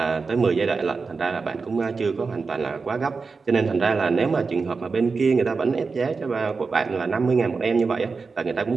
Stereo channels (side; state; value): left; quieter; 4.6 dB